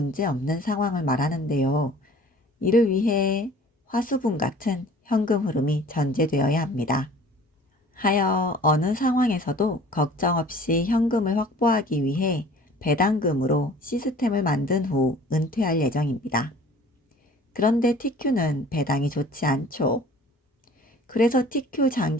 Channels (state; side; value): normal; both; correlation 0.48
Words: 없는 상황을 말하는데요. 이를 위해 화수분 같은 현금 흐름이 전제되어야 합니다. 하여 어느 상황에서도 걱정 없이 현금을 확보하기 위해 배당금으로 시스템을 만든 후 은퇴할 예정입니다. 그런데 TQ는 배당이 좋지 않죠. 그래서 TQ